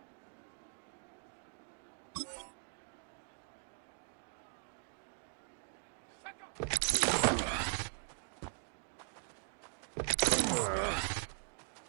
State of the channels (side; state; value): left; silent; 51 dB below the other